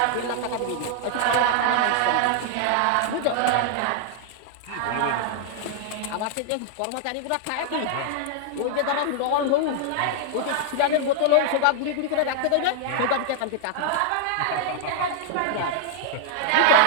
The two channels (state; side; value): different; both; correlation -0.01